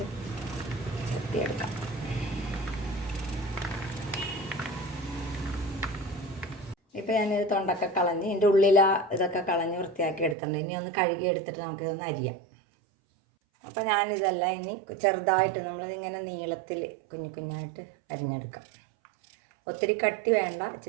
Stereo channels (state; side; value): drops out; left; at 10.4 s